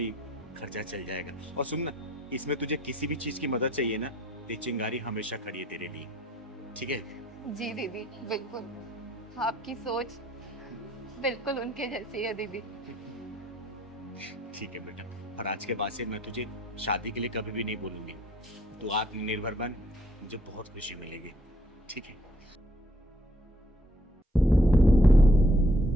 खर्चा चल जाएगा। और सुन ना, इसमें तुझे किसी भी चीज़ की मदद चाहिए ना, तो चिंगारी हमेशा खड़ी है तेरे लिए, ठीक है? जी दीदी बिल्कुल, आपकी सोच बिल्कुल उनके जैसी है दीदी। ठीक है बेटा, और आज के बाद से मैं तुझे शादी के लिए कभी भी नहीं बोलूंगी। तू आत्मनिर्भर बन, मुझे बहुत खुशी मिलेगी, ठीक है?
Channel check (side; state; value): both; normal; correlation 0.64